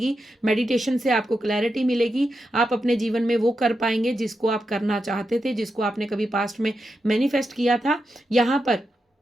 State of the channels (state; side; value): normal; both; correlation 0.87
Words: मेडिटेशन से आपको क्लैरिटी मिलेगी। आप अपने जीवन में वो कर पाएंगे जिसको आप करना चाहते थे, जिसको आपने कभी पास्ट में मैनिफेस्ट किया था। यहाँ पर